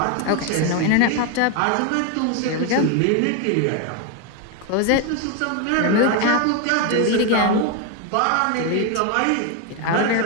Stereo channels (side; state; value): both; different; correlation 0.01